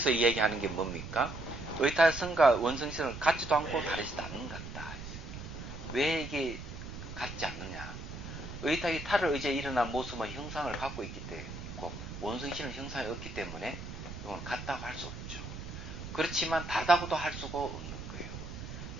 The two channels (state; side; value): noise; right; rumble, 10 dB below the sound